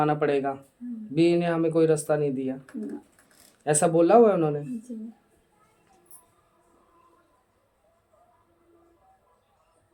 पड़ेगा, बी ने हमें कोई रास्ता नहीं दिया, ऐसा बोला हुआ है उन्होंने?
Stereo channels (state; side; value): identical; both; correlation 1.00